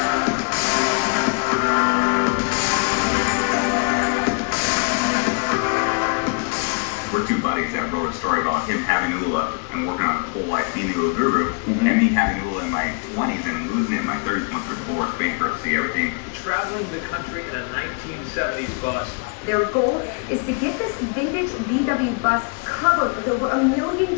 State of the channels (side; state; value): right; quieter; 35.2 dB